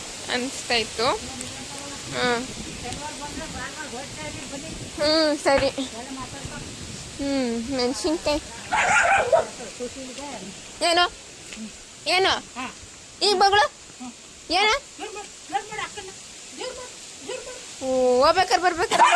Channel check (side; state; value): both; identical; correlation 1.00